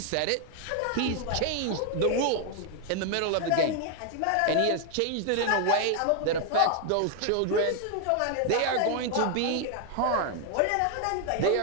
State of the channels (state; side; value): different; both; correlation 0.00